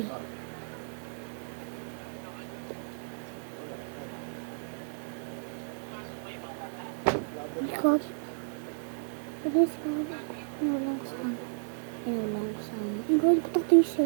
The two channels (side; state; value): left; silent; digital silence